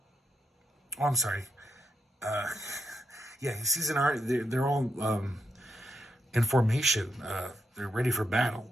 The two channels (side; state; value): both; normal; correlation 0.83